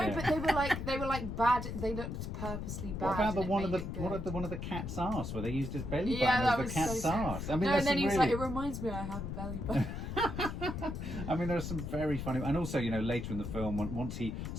Yeah. but they were like bad. They looked purposely bad. What about the and it one of made the it good. what of the one of the cat's arse where they used his belly Yeah, button that as the was cat's so arse? I mean, No, there's and then some he was really... like, "It reminds me, I have a belly button." I mean, there are some very funny, and also, you know, later in the film, once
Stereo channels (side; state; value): left; noise; rumble, 5 dB below the sound